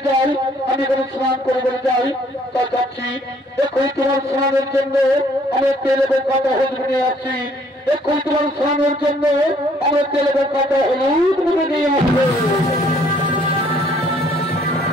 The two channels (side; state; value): both; normal; correlation 0.62